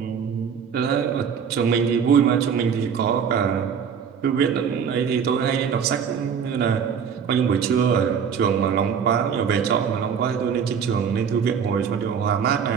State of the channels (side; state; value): left; quieter; 7.1 dB